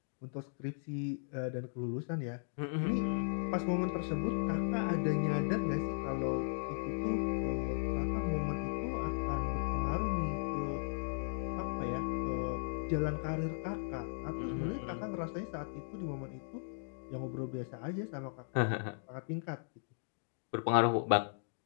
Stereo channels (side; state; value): right; silent; digital silence